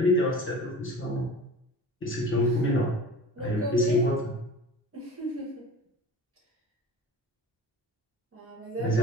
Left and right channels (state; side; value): normal; both; correlation 0.38